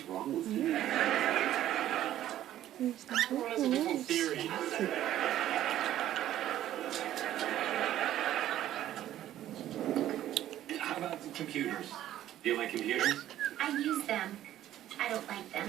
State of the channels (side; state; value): left; quieter; 12.6 dB